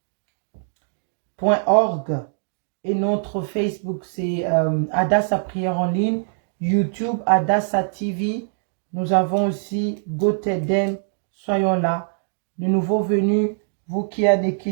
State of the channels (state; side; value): silent; left; digital silence